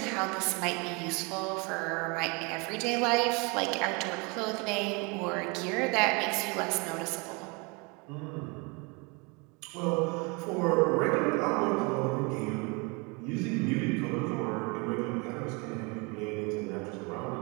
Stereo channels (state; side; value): quieter; left; 30.0 dB